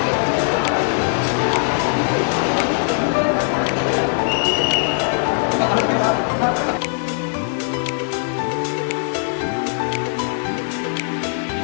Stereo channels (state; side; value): silent; right; 65 dB below the other